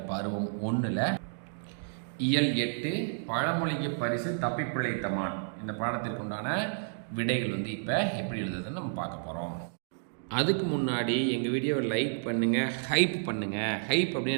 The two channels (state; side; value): silent; left; digital silence